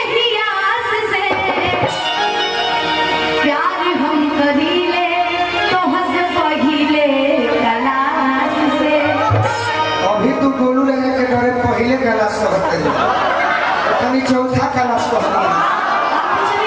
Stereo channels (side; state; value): both; identical; correlation 1.00